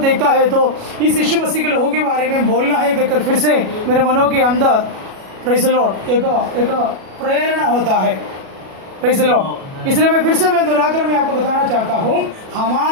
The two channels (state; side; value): late; left; 37 ms